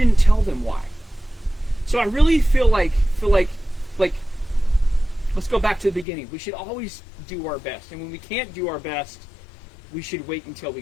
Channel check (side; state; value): right; drops out; at 6.1 s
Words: tell them why. So I really feel like let's go back to the beginning. We should always do our best. And when we can't do our best, we should wait until